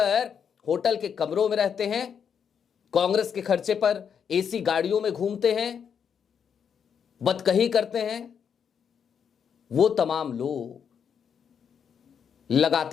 होटल के कमरों में रहते हैं, कांग्रेस के खर्चे पर एसी गाड़ियों में घूमते हैं, बदकही करते हैं। वो तमाम लोग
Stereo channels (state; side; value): quieter; right; 7.4 dB